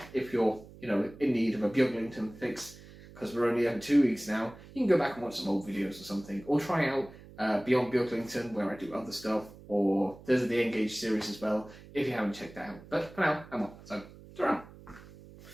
if you're, you know, in need of a Beaglington fix, because we're only over 2 weeks now, you can go back and watch some old videos or something. Or try out Beyond Beaglington, where I do other stuff. Or there's the Engage series as well, if you haven't checked that out. But for now, I'm off.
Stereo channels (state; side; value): noise; right; hum, 19 dB below the sound